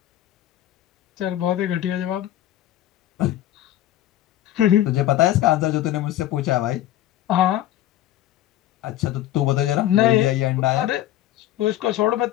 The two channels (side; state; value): right; quieter; 13.3 dB